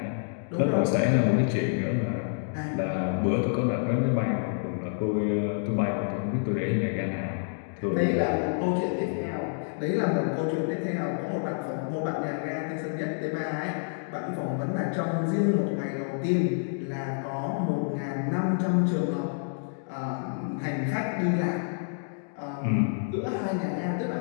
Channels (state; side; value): silent; right; digital silence